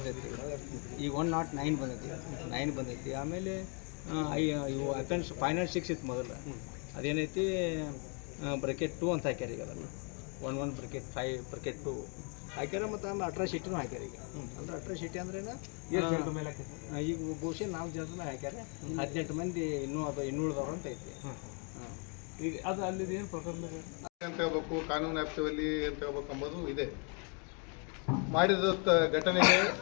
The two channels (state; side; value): quieter; right; 37.1 dB